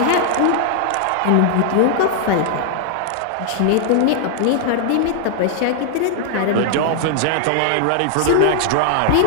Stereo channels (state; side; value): different; both; correlation 0.00